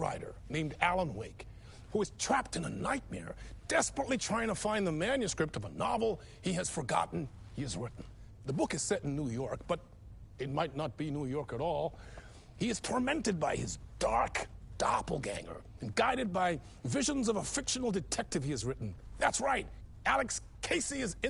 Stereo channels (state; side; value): identical; both; correlation 1.00